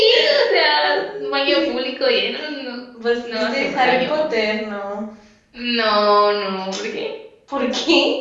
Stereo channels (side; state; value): both; identical; correlation 1.00